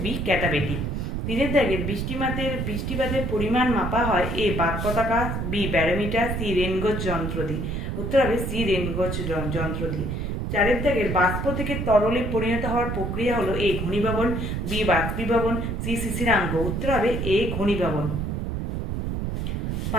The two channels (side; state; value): right; noise; rumble, 2 dB below the sound